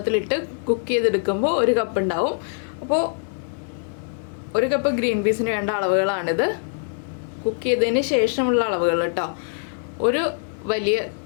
കുക്ക് ചെയ്തെടുക്കുമ്പോൾ 1 കപ്പ് ഉണ്ടാവും. അപ്പോൾ 1 കപ്പ് ഗ്രീൻ പീസിന് വേണ്ട അളവുകളാണിത്. കുക്ക് ചെയ്തതിന് ശേഷമുള്ള അളവുകൾ കേട്ടോ. ഒരു വലിയ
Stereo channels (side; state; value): right; silent; digital silence